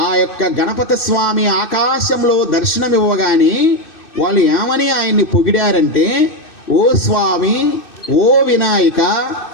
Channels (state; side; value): late; right; 2.6 ms